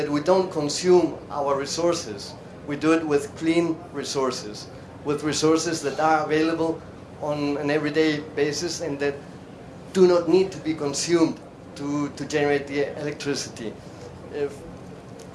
don't consume our resources. We do it with clean resources, with resources that are available on an everyday basis and that do not need to be consumed to generate the electricity.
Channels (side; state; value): both; identical; correlation 1.00